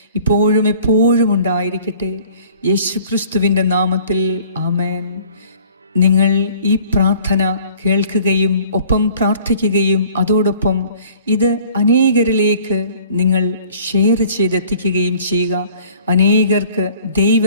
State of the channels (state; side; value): inverted; both; correlation -0.52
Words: ഇപ്പോഴും എപ്പോഴും ഉണ്ടായിരിക്കട്ടെ. യേശുക്രിസ്തുവിൻ്റെ നാമത്തിൽ ആമേൻ. നിങ്ങൾ ഈ പ്രാർത്ഥന കേൾക്കുകയും ഒപ്പം പ്രാർത്ഥിക്കുകയും അതോടൊപ്പം ഇത് അനേകരിലേക്ക് നിങ്ങൾ ഷെയർ ചെയ്തെത്തിക്കുകയും ചെയ്യുക. അനേകർക്ക്